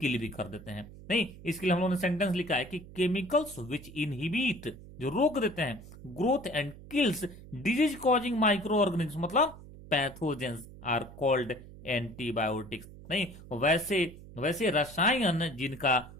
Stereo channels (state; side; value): noise; right; hum, 17 dB below the sound